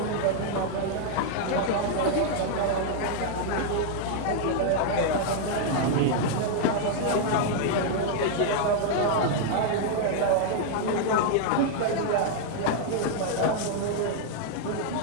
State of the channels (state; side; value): different; both; correlation 0.00